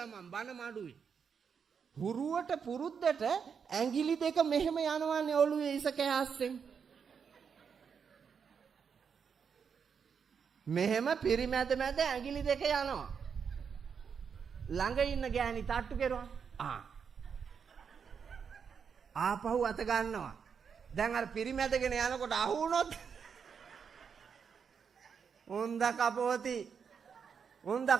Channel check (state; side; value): quieter; left; 6.6 dB